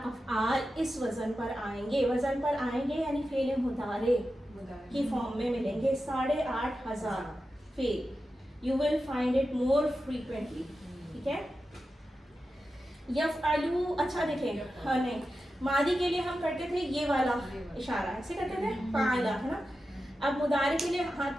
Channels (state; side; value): normal; both; correlation 0.91